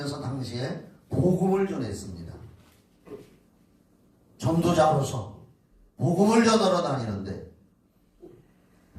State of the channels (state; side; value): identical; both; correlation 1.00